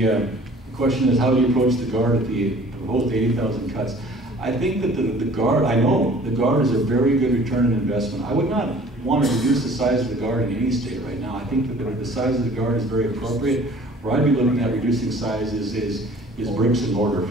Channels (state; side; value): normal; both; correlation 0.50